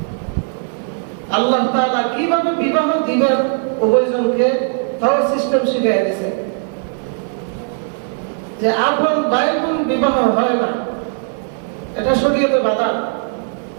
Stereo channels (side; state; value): left; silent; 58 dB below the other